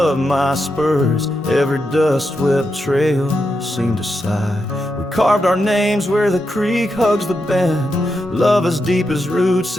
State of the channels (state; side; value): normal; both; correlation 0.85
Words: of my spurs. Every dust-swept trail seemed to sigh. We carved our names where the creek hugs the bend. Love as deep as roots